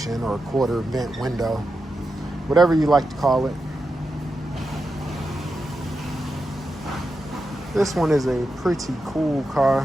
or quarter vent window, whatever you like to call it. This one is a pretty cool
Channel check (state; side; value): normal; both; correlation 0.88